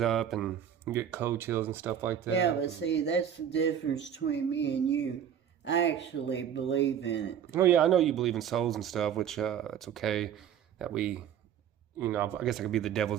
up and you get cold chills and stuff like that. Yeah, but see, that's the difference between me and you. I actually believe in it. Oh, yeah, I know you believe in souls and stuff, which it's okay that we, you know, I guess I could be the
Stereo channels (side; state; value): left; quieter; 9.1 dB